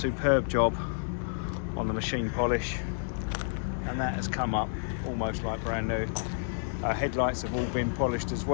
job on the machine polish, and that has come up almost like brand new. Headlights have all been polished as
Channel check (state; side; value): silent; right; 58 dB below the other